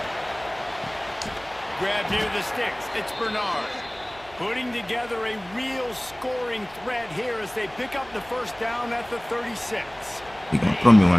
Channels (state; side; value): noise; right; hum, 23 dB below the sound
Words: Grab near the sticks. It's Bernard. Putting together a real scoring threat here as they pick up the first down at the 36. He gonna throw me one